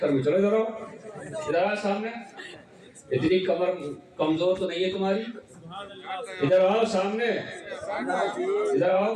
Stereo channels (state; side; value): identical; both; correlation 1.00